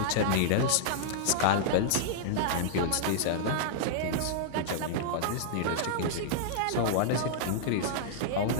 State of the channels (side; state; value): both; different; correlation -0.01